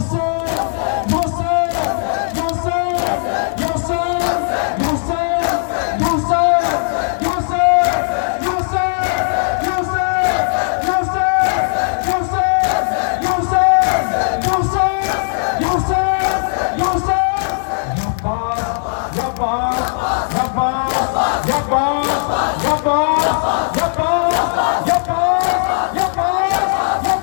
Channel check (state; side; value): silent; right; 58 dB below the other